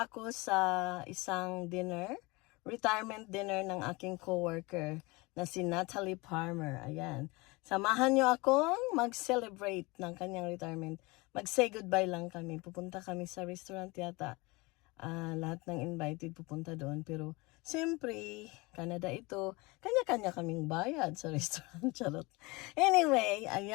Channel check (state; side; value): quieter; right; 24.7 dB